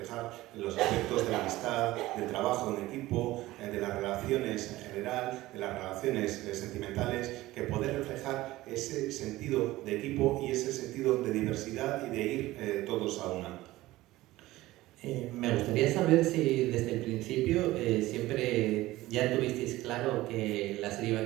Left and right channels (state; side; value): quieter; left; 17.5 dB